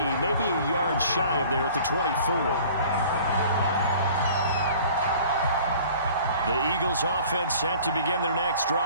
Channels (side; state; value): both; inverted; correlation -0.48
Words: maybe a yard shy of there at the 24. The Eagles offense set to begin their next